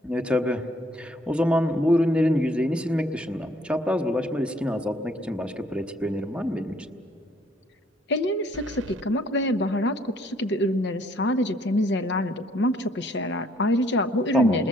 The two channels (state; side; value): normal; both; correlation 0.64